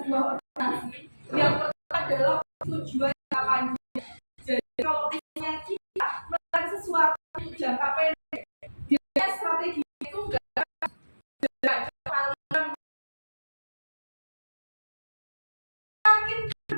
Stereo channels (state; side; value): inverted; both; correlation -1.00